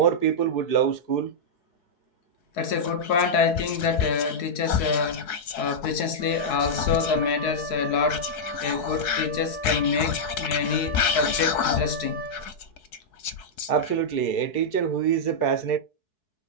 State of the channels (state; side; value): late; right; 4.6 ms